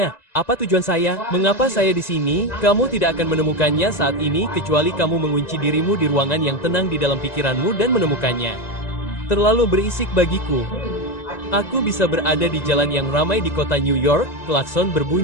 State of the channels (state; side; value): late; right; 1.9 ms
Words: apa tujuan saya? Mengapa saya di sini? Kamu tidak akan menemukannya saat ini kecuali kamu mengunci dirimu di ruangan yang tenang di dalam pikiranmu dan menemukannya. Terlalu berisik bagiku. Aku bisa berada di jalan yang ramai di kota New York, klakson